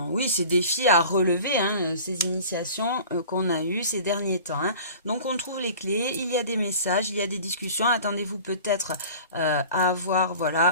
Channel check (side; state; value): both; inverted; correlation -0.42